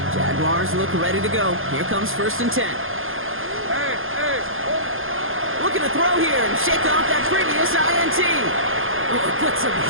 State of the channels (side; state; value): left; late; 0.59 ms